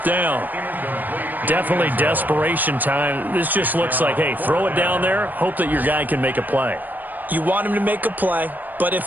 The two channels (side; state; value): left; late; 0.087 ms